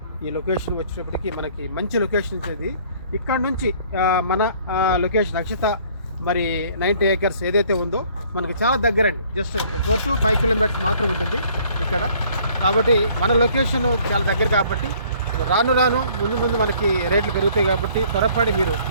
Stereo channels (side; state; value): both; inverted; correlation -0.58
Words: ఈ లొకేషన్ వచ్చేటప్పటికి మనకి మంచి లొకేషన్ ఇది. ఇక్కడ నుంచి మన లొకేషన్ అక్షత మరి 90 acres ఏదైతే ఉందో మనకి చాలా దగ్గరండి. జస్ట్ 4 to 5 kilometers మాత్రం ఉంటుంది ఇక్కడ. కాబట్టి మన లొకేషన్ చాలా దగ్గర కాబట్టి రాను ముందు మనకి రేట్లు పెరుగుతాయి. కాబట్టి త్వరపడి మీరు